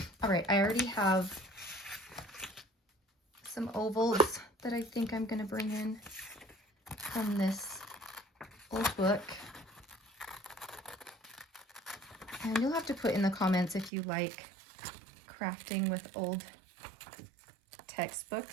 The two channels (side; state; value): left; drops out; at 13.9 s